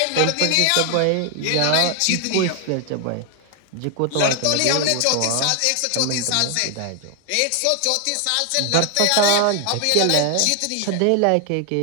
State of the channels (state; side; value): different; both; correlation 0.00